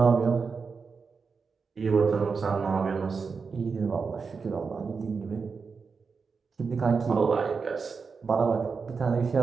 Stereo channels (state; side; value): quieter; left; 5.1 dB